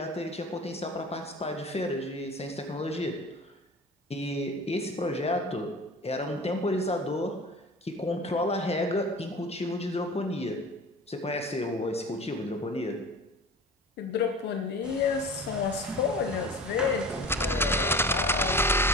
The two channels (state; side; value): normal; both; correlation 0.38